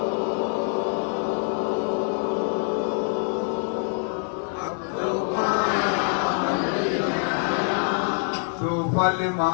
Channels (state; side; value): quieter; right; 39.4 dB